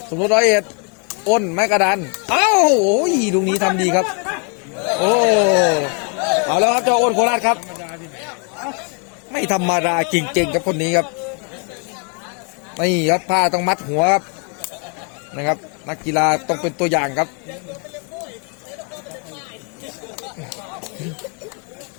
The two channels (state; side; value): quieter; right; 38.0 dB